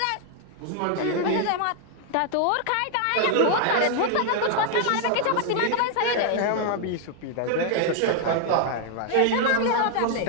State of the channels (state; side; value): different; both; correlation 0.00